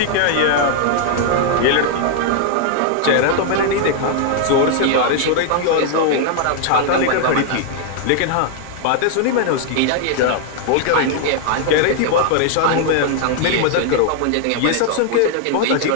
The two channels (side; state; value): both; different; correlation 0.00